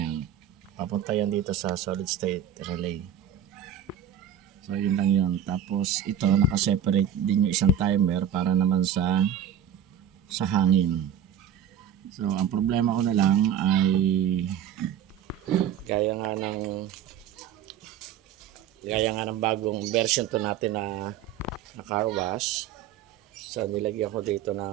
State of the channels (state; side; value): quieter; left; 8.7 dB